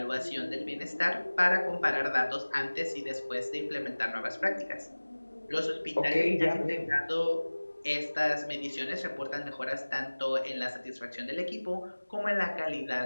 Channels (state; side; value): inverted; both; correlation -1.00